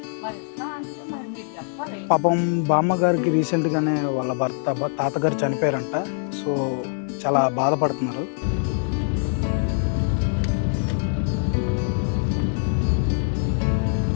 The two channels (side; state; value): right; silent; 63 dB below the other